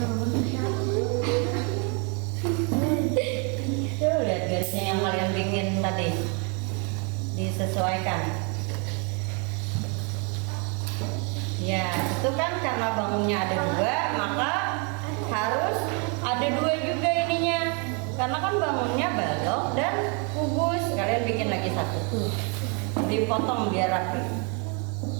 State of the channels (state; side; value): quieter; left; 35.1 dB